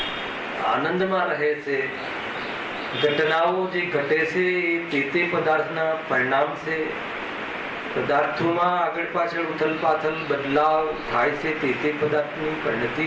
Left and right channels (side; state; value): both; identical; correlation 1.00